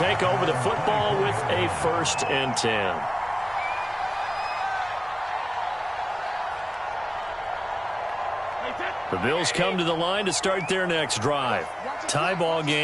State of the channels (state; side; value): identical; both; correlation 1.00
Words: over the football with a 1st and 10. The Bills come to the line to start their next drive. Tie ball